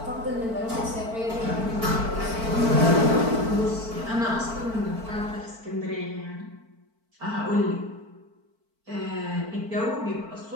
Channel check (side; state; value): left; late; 4.5 ms